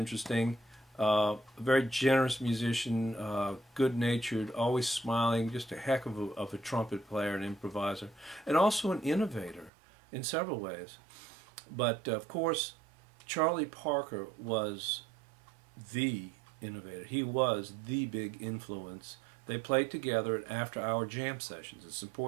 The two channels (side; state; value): left; drops out; at 9.7 s